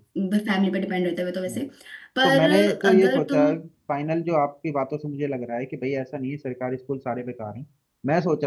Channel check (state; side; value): identical; both; correlation 1.00